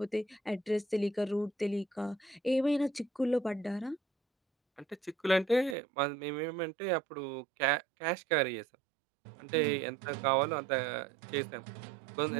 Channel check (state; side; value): drops out; left; at 5.8 s